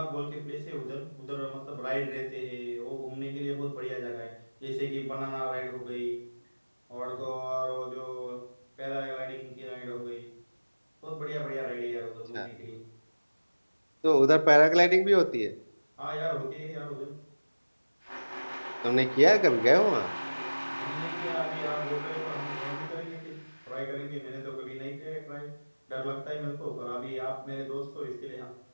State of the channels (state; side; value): inverted; both; correlation -1.00